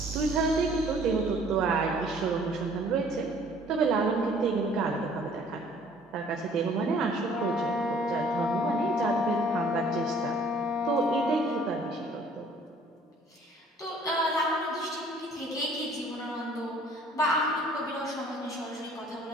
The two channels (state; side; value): normal; both; correlation 0.56